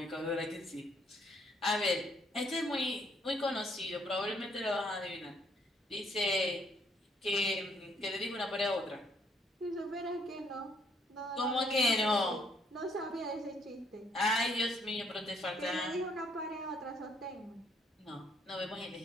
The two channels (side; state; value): both; normal; correlation 0.68